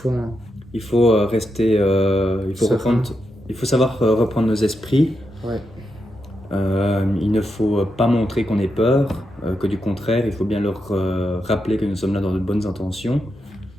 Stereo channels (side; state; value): both; normal; correlation 0.85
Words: Il faut rester, Serein. il faut savoir reprendre nos esprits. Ouais. Il ne faut pas montrer qu'on ait peur, que du contraire, il faut bien leur rappeler que nous sommes là dans de bonnes intentions.